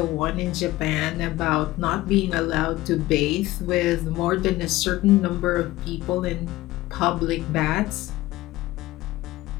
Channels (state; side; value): quieter; right; 17.5 dB